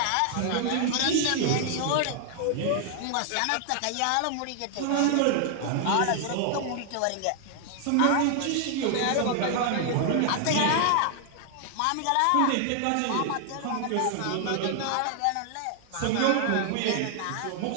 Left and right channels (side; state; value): both; different; correlation 0.00